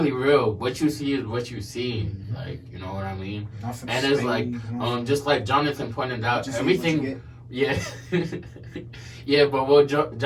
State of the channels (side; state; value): both; identical; correlation 1.00